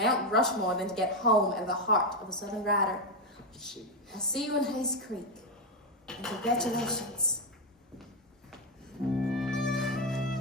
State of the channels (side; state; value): both; normal; correlation 0.06